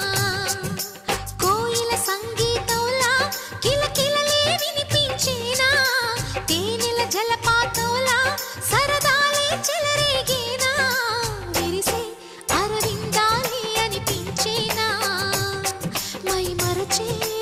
కోయిల సంగీతంలా కిలకిలలే వినిపించేనా తేనెల జలపాతంలా సరదాలే చెలరేగేనా విరిసే అరవిందాలే అనిపించేనా మై మరచే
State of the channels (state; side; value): identical; both; correlation 1.00